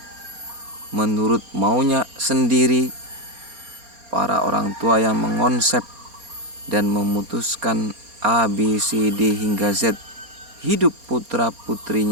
menurut maunya sendiri, para orang tua yang mengonsep dan memutuskan A, B, C, D hingga Z hidup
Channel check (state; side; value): late; left; 4.3 ms